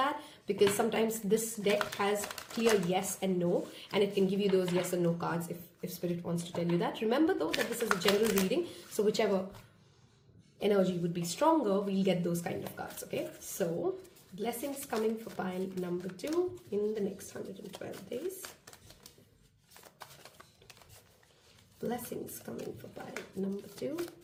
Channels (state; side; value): identical; both; correlation 1.00